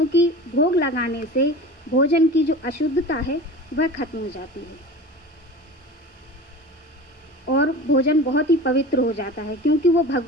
भोग लगाने से भोजन की जो अशुद्धता है वह खत्म हो जाती है और भोजन बहुत ही पवित्र हो जाता है, क्योंकि वो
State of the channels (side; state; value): both; normal; correlation 0.35